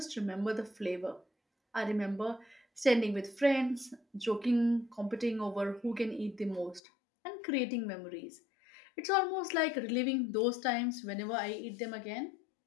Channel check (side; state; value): right; drops out; at 6.8 s